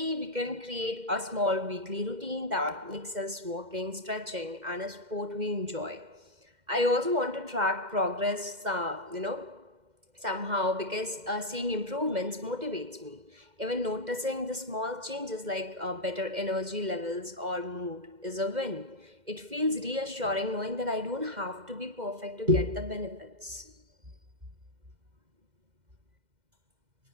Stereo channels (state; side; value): late; left; 2.1 ms